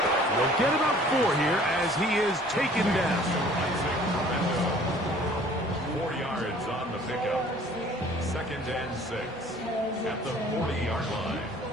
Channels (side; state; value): right; noise; hum, 23 dB below the sound